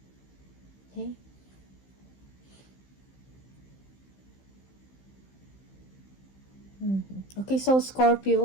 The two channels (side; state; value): right; late; 15 ms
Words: Okay? Okay, so